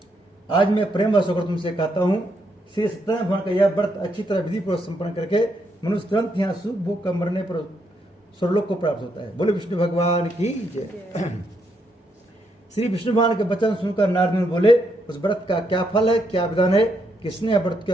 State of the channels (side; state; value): both; normal; correlation 0.77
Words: आज मैं प्रेम वश होकर तुमसे कहता हूँ, श्री सत्यनारायण भगवान का यह व्रत अच्छी तरह विधि पूर्वक संपन्न करके मनुष्य तुरंत यहाँ सुख भोग का मरने पर स्वर्लोक को प्राप्त होता है। बोले विष्णु भगवान की जय। श्री विष्णु भगवान के वचन सुनकर नारद मुनि बोले, उस व्रत का क्या फल है, क्या विधान है, किसने व्रत